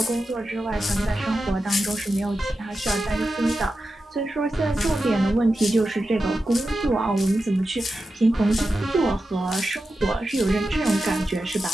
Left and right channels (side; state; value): both; normal; correlation 0.91